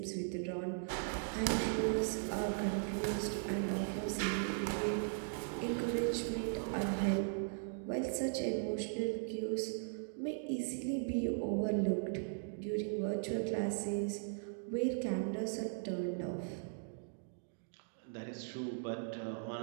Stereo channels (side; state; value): left; silent; digital silence